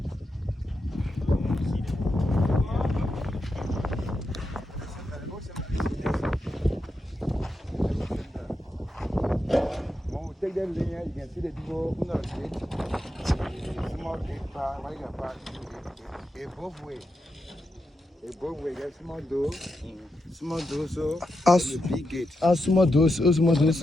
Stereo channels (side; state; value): both; normal; correlation 0.86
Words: take that linear, you can see the people who not gate. Small gate part, what you got part? It both way. It both way. Get small door. Small door, so the big gate. Small door, so.